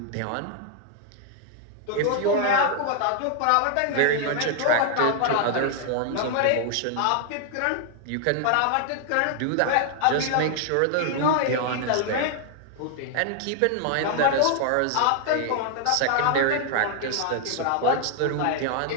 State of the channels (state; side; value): different; both; correlation 0.00